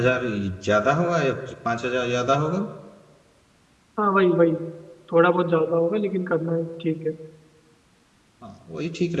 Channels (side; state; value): both; identical; correlation 1.00